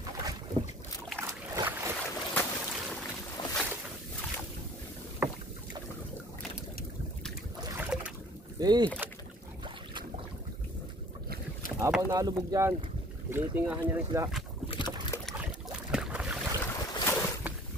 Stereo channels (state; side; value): normal; both; correlation 0.51